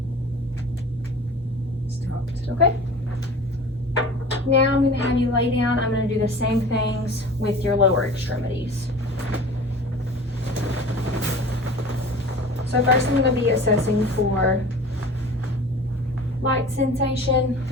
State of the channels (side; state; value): both; normal; correlation 0.40